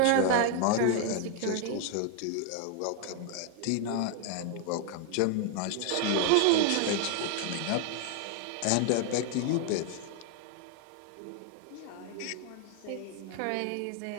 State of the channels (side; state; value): both; different; correlation 0.00